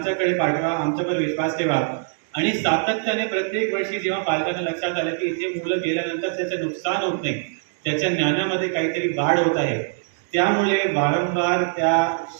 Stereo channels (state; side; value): silent; left; digital silence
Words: पाठवा, आमच्यावर विश्वास ठेवा. आणि सातत्याने प्रत्येक वर्षी जेव्हा पालकांना लक्षात आलं की इथे मुलं गेल्यानंतर त्याचं नुकसान होत नाही, त्याच्या ज्ञानामध्ये काहीतरी वाढ होत आहे, त्यामुळे वारंवार त्या